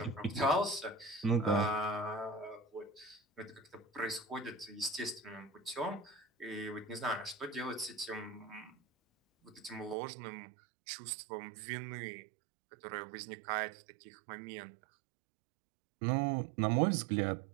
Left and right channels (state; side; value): drops out; left; at 10.0 s